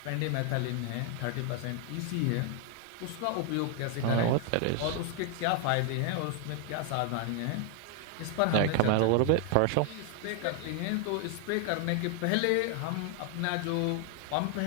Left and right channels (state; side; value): different; both; correlation 0.00